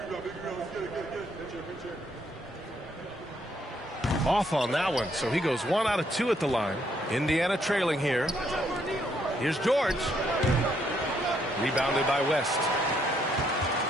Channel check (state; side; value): normal; both; correlation 0.72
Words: Off on that one, so he goes 1 out of 2 at the line. Indiana trailing here. Here's George. Rebounded by West.